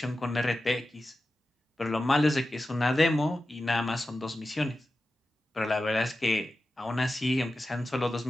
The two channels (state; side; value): normal; both; correlation 0.93